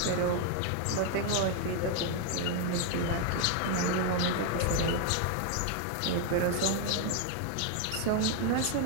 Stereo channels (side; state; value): both; different; correlation 0.00